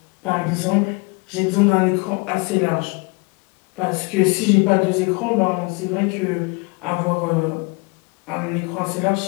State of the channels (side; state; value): right; quieter; 29.2 dB